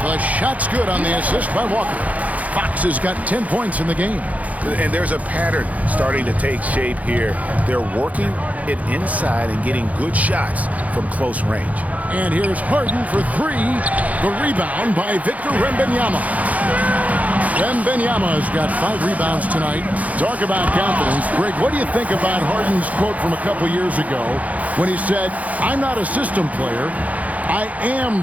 The shot's good on the assist by Walker. Fox has got 10 points in the game. And there's a pattern starting to take shape here. They're working it inside and getting good shots from close range. And here's Harden for 3. The rebound by Victor Wembanyama. Wembanyama's got 5 rebounds tonight. Talk about confidence. Greg, what do you think about Harden's quote from a couple years ago when he said, "I'm not a system player, I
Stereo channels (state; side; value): late; left; 0.071 ms